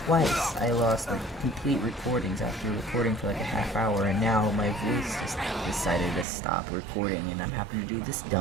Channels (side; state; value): left; drops out; at 6.2 s